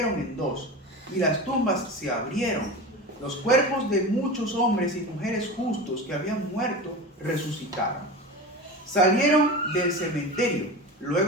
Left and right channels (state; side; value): normal; both; correlation 0.28